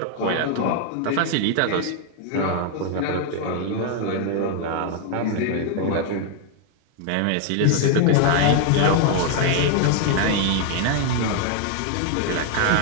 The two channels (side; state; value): both; different; correlation 0.00